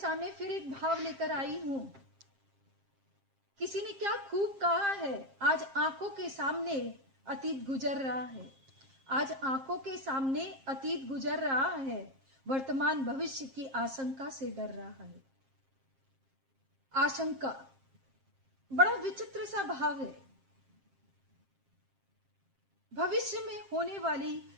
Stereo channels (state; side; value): late; left; 7.5 ms